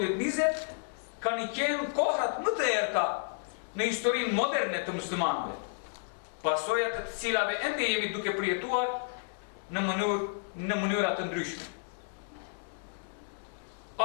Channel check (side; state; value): right; silent; digital silence